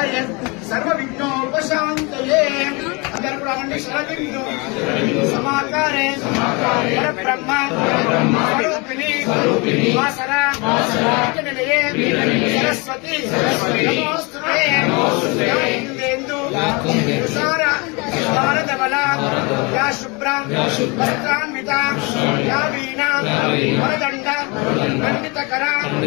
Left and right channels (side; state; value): right; quieter; 28.7 dB